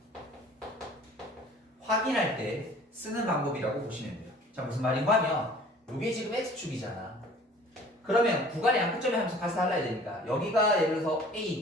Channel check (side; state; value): both; normal; correlation 0.49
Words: 확인할 때 쓰는 방법이라고 보시면 돼요. 자, 무슨 말인가 하면 이게 지금 x축이잖아. 그러면 구간의 양끝점의 함수 값을 달라야 되니까 여기가 예를 들어서